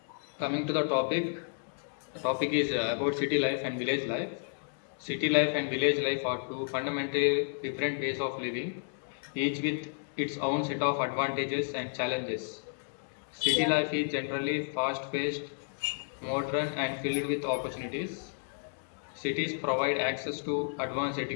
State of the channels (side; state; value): right; silent; digital silence